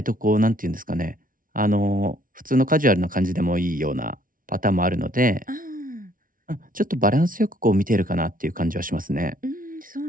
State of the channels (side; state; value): left; late; 0.40 ms